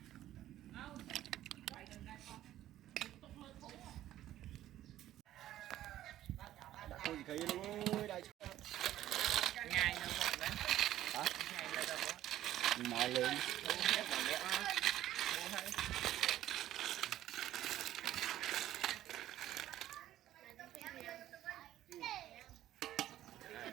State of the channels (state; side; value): quieter; left; 13.2 dB